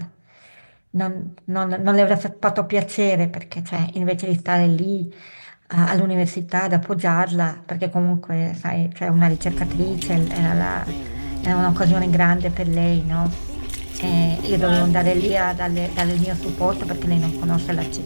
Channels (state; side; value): inverted; both; correlation -1.00